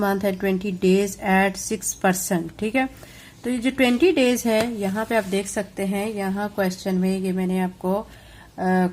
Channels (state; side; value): identical; both; correlation 1.00